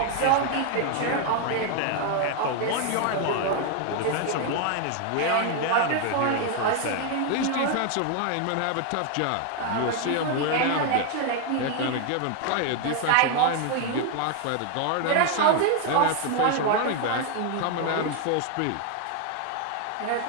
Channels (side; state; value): both; different; correlation 0.00